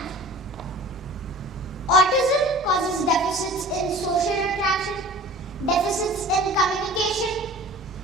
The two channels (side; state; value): both; normal; correlation 0.42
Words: Autism causes deficits in social interaction, deficits in communication,